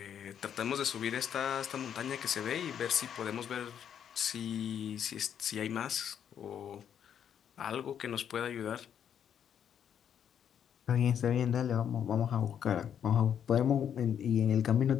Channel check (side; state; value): right; quieter; 8.8 dB